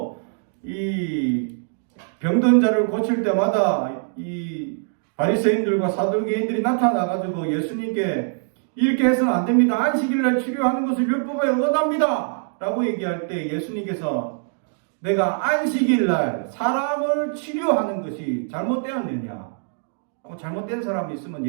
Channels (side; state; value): left; silent; digital silence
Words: 이 병든 자를 고칠 때마다 이 바리새인들과 사두개인들이 나타나가지고 예수님께 이렇게 해서는 안 됩니다. 안식일날 치료하는 것을 율법에 어긋납니다. 라고 얘기할 때 예수님께서 내가 안식일날 사람을 치료하는 것이 잘못되었느냐? 잘못된 사람이 있으면